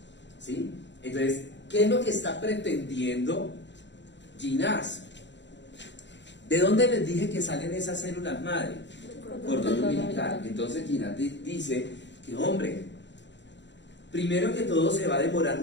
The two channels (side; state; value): right; late; 0.52 ms